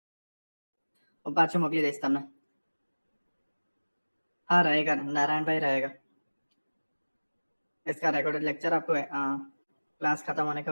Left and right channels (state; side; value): inverted; both; correlation -1.00